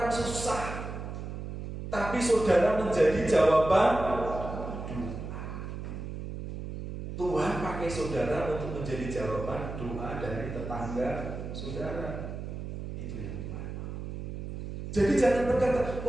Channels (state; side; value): noise; right; hum, 7 dB below the sound